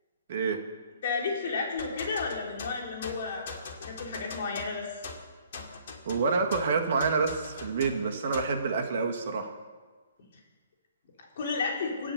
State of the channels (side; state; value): both; inverted; correlation -0.59